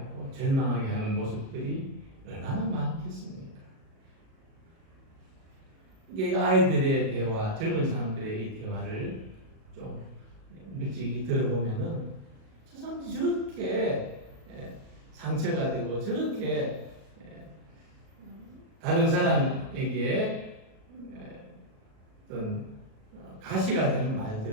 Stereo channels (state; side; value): late; left; 37 ms